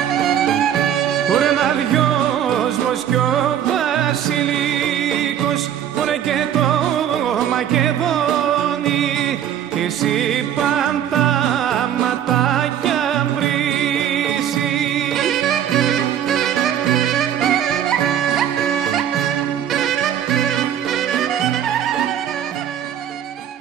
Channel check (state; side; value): quieter; left; 9.9 dB